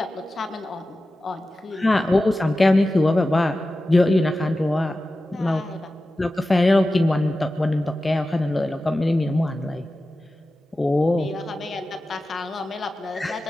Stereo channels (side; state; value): both; normal; correlation 0.94